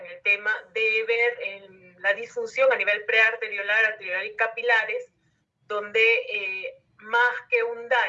el tema de ver en la disfunción a nivel prearteriolar, arteriolar y capilares, donde más que un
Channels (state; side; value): identical; both; correlation 1.00